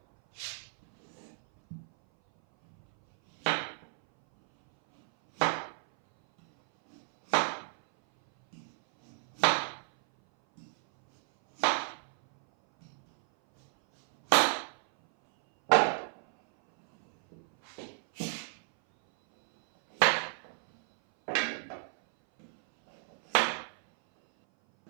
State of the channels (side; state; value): left; silent; 57 dB below the other